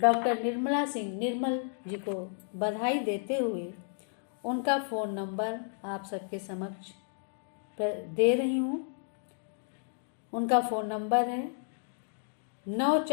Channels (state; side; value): silent; right; digital silence